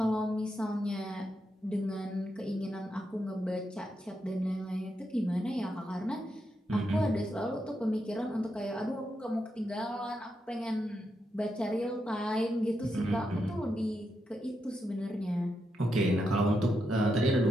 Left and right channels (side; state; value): both; normal; correlation 0.83